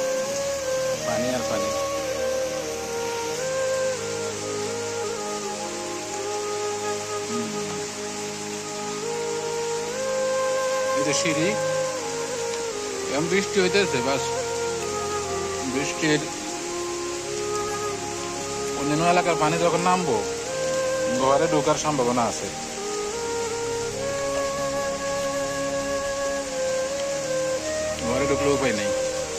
পানি আর পানি। এই যে সিঁড়ি, এখন বৃষ্টি হইতেছে, বাস বৃষ্টির অন্যান্য এলাকার পানি যখন নামবো, ঘরে ঢোকার সম্ভাবনা আছে। ঘরে ঢুকলে উপায় নেই,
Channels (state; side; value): identical; both; correlation 1.00